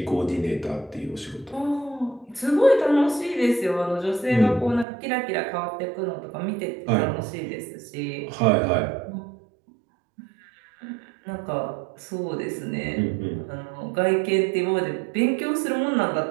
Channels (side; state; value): left; drops out; at 4.9 s